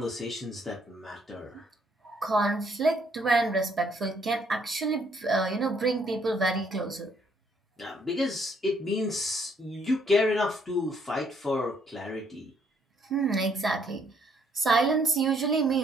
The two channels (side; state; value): both; normal; correlation 0.68